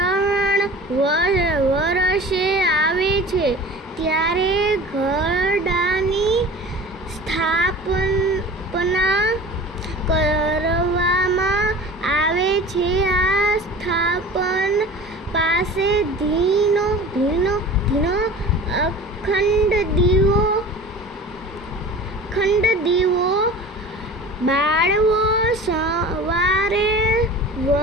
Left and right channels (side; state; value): both; normal; correlation 0.39